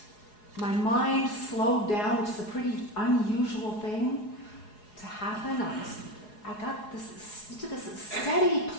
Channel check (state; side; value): late; right; 4.8 ms